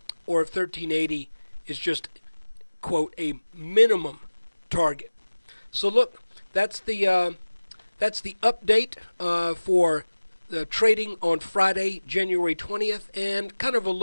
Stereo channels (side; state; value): both; inverted; correlation -1.00